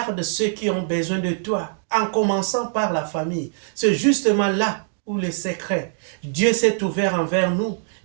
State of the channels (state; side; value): silent; left; digital silence